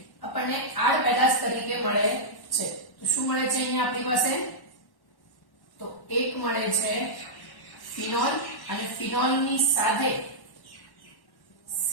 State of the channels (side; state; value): right; late; 1.1 ms